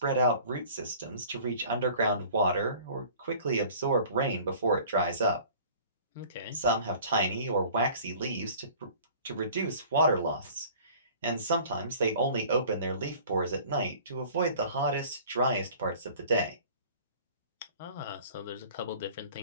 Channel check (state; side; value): inverted; both; correlation -0.47